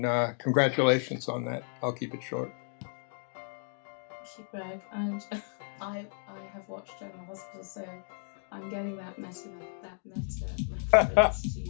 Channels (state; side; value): silent; right; 56 dB below the other